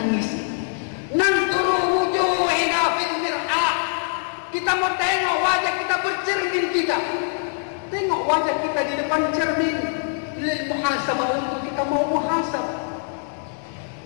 Nanduru wujuhina fil mir'ah, kita mau tengok wajah kita, bercermin kita. Tengok wajah kita di depan cermin lil muhasabah, untuk kita mau muhasabah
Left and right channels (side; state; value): right; silent; digital silence